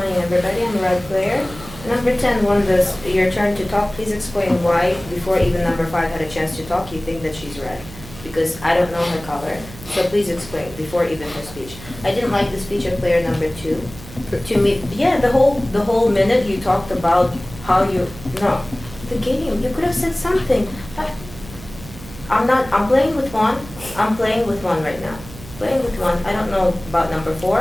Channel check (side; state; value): right; noise; hum, 16 dB below the sound